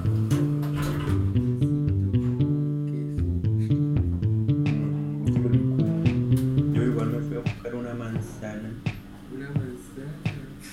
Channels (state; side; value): identical; both; correlation 1.00